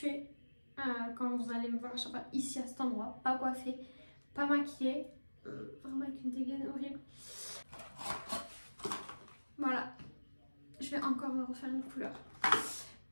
quand vous allez me voir à chaque fois ici à cet endroit, pas coiffée, pas maquillée, vraiment avec une dégaine horrible. Voilà, je vais encore me refaire une couleur.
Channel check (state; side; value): inverted; both; correlation -1.00